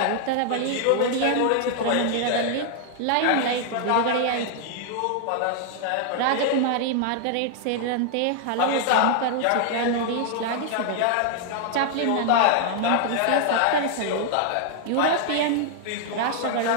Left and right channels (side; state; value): both; different; correlation 0.00